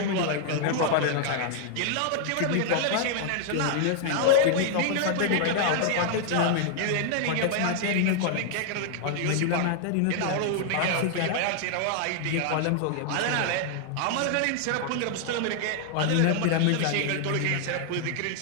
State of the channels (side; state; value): both; different; correlation 0.00